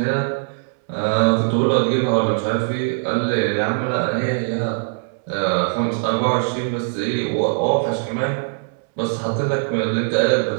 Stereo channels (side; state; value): left; silent; 65 dB below the other